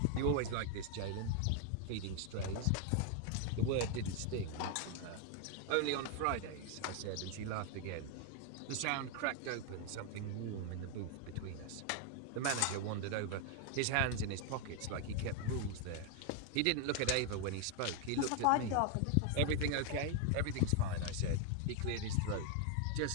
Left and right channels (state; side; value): different; both; correlation 0.00